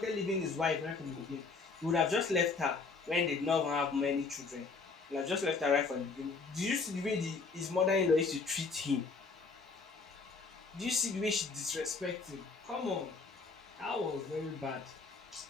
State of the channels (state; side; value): quieter; right; 4.4 dB